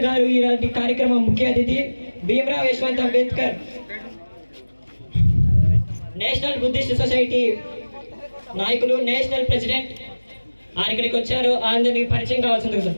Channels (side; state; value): both; inverted; correlation -1.00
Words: గారు ఈనాటి కార్యక్రమం ముఖ్య అతిథి. Bhimrao Yashwant Ambedkar national Buddhist society నాయకులు, నేషనల్ ప్రెసిడెంట్. ఆయన ఇక్కడికి వచ్చారు, అందరికి పరిచయం కావాల్సింది